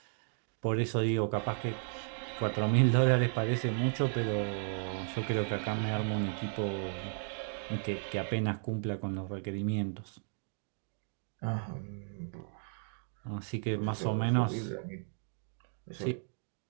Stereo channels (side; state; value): left; silent; 55 dB below the other